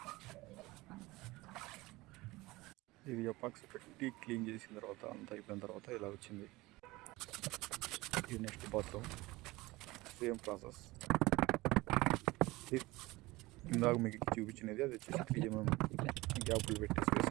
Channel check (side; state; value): left; quieter; 20.5 dB